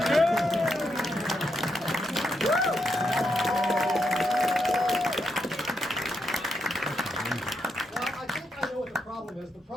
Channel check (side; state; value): both; normal; correlation 0.81